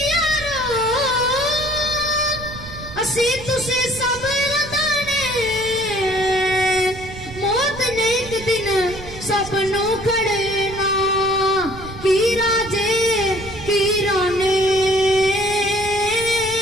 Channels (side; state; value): right; noise; rumble, 14 dB below the sound